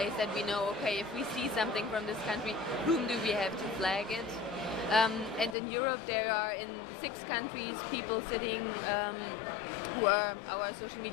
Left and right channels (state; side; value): drops out; right; at 5.6 s